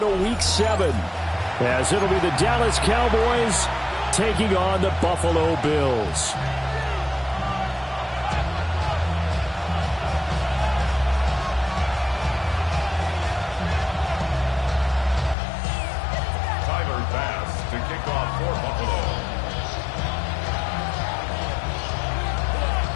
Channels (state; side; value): drops out; right; at 15.4 s